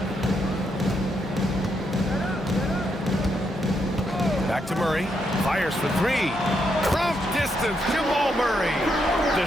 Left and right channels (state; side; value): normal; both; correlation 0.79